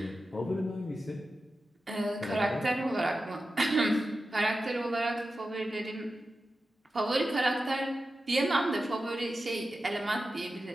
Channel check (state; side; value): normal; both; correlation 0.92